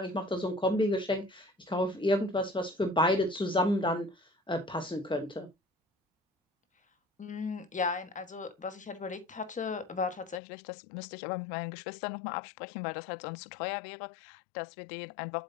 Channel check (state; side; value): drops out; right; at 10.4 s